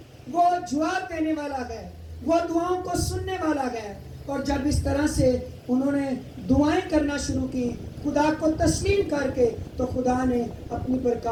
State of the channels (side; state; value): both; identical; correlation 1.00